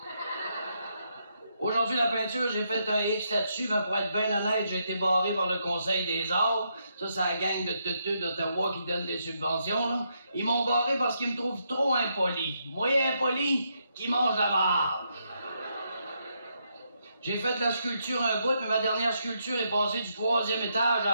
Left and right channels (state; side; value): inverted; both; correlation -0.78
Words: Aujourd'hui, la peinture, j'ai fait un X là-dessus, mais pour être bien honnête, j'ai été barré par le Conseil des arts. Ça, c'est la gang de teuteux d'Ottawa qui donne des subventions, là. Ils m'ont barré parce qu'ils me trouvent trop impoli. Moi, impoli, qui mange la marde. J'ai fait de la sculpture un bout, mais ma dernière sculpture est passée du 3e étage